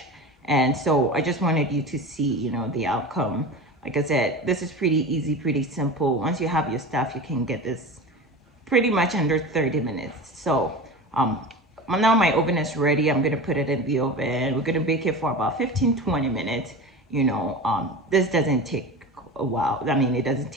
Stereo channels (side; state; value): both; normal; correlation 0.30